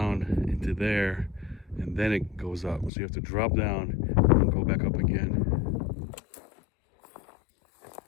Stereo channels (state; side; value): drops out; right; at 2.9 s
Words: into there and then it goes up. So you have to drop down and go back up again.